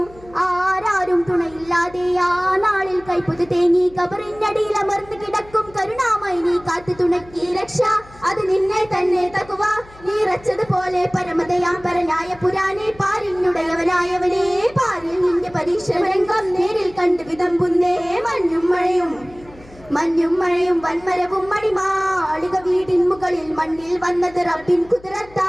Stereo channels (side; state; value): left; noise; hum, 23 dB below the sound